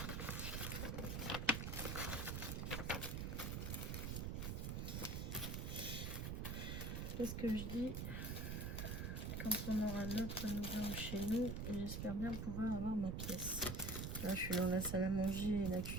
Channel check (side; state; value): right; noise; rumble, 2 dB below the sound